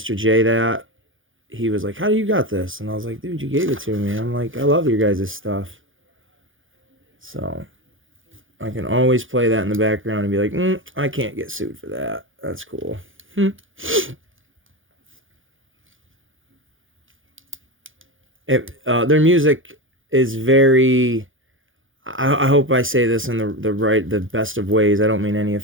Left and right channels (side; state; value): left; late; 0.58 ms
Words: J, that, he was like, "How do you got this?" And I was like, "Dude, you gave it to me." I'm like, "I love your guys' stuff." So I can always play that in the background and be like, I can't get sued for that. That's cool. Their music is very. I hope I say this in the best of ways. I don't mean any